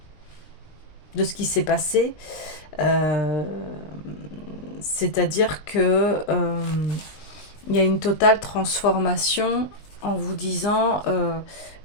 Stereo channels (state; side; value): late; right; 19 ms